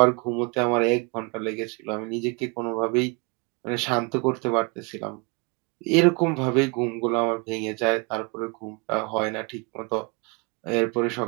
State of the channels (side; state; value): left; quieter; 30.0 dB